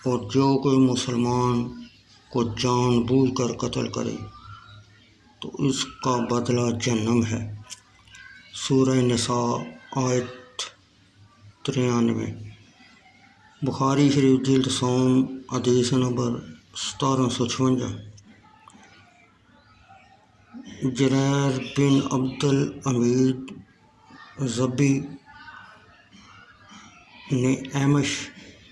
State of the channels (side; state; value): both; identical; correlation 1.00